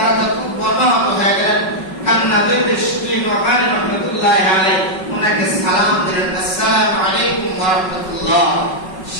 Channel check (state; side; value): late; right; 5.4 ms